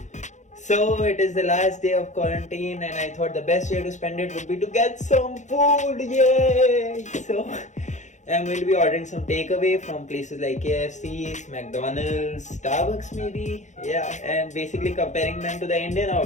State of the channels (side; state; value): right; late; 0.35 ms